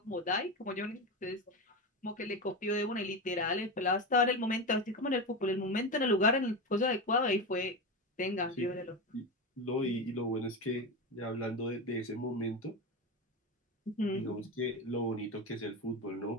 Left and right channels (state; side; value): normal; both; correlation 0.19